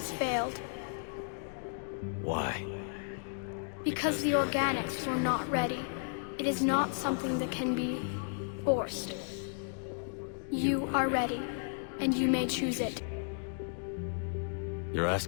failed. Why? Because the organics were not ready. It is not something that can be forced. You are ready, and you may choose it. You're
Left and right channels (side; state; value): right; silent; digital silence